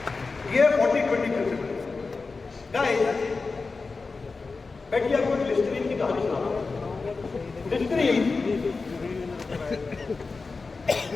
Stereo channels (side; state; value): right; quieter; 4.2 dB